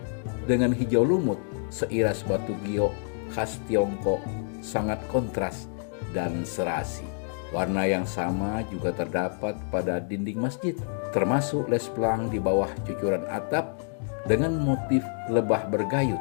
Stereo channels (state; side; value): silent; right; 60 dB below the other